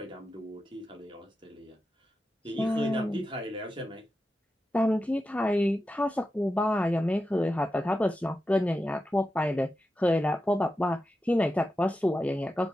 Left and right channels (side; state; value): both; normal; correlation 0.90